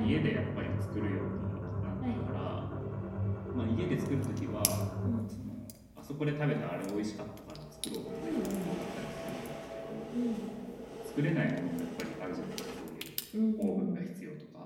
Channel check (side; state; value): both; identical; correlation 1.00